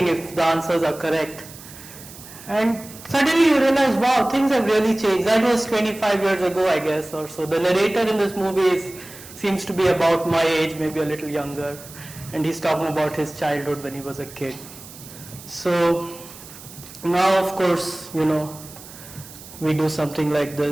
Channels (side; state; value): right; noise; hiss, 17 dB below the sound